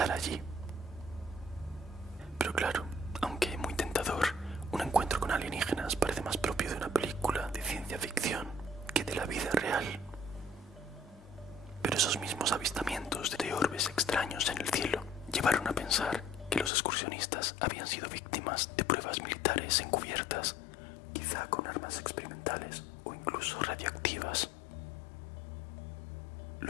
allí. Pero claro, aunque muy tentador, un encuentro con alienígenas parece más propio de una película de ciencia ficción que de la vida real. Pero esos mismos avistamientos de orbes extraños en el cielo llevaron a pensar que los excursionistas habían sido víctimas de pruebas militares encubiertas, quizá con armas experimentales o incluso radioactivas.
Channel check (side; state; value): right; drops out; at 16.7 s